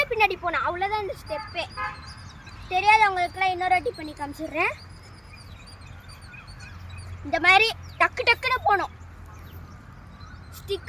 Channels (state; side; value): identical; both; correlation 1.00